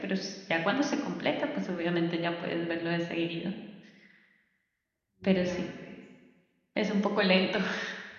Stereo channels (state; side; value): identical; both; correlation 1.00